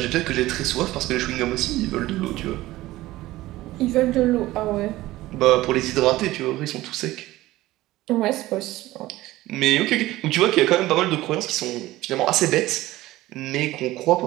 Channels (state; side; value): quieter; left; 17.1 dB